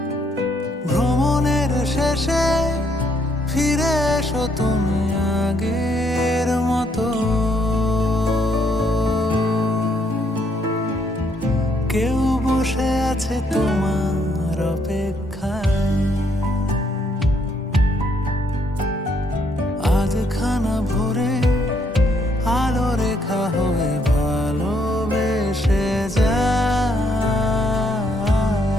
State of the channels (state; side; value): normal; both; correlation 0.71